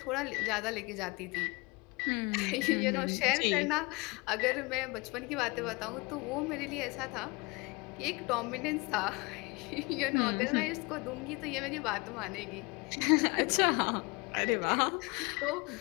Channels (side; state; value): right; quieter; 26.5 dB